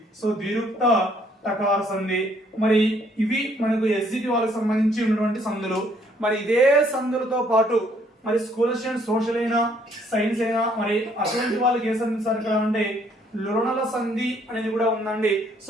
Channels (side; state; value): both; normal; correlation 0.65